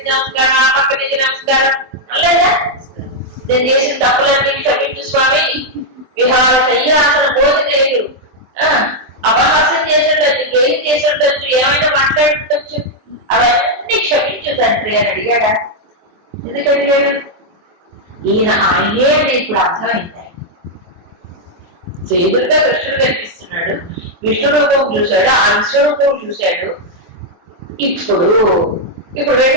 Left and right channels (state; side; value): late; left; 23 ms